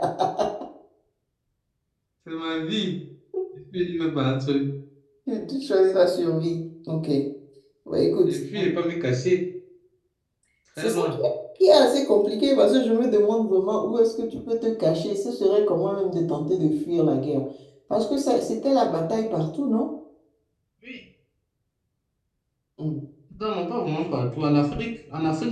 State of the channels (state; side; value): identical; both; correlation 1.00